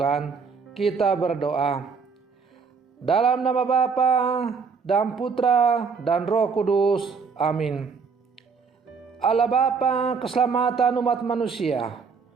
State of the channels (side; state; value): left; quieter; 5.4 dB